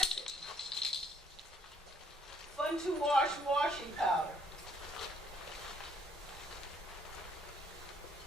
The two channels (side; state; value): both; normal; correlation 0.66